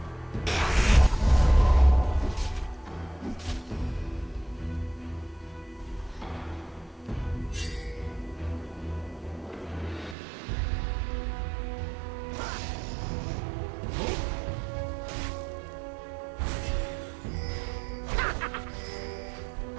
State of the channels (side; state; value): left; drops out; at 10.2 s